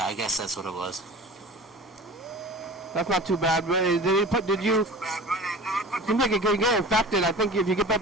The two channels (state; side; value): normal; both; correlation 0.38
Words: I guess that's what it was. That's not too bad. But did you... It seems like it could get infected. I think if you get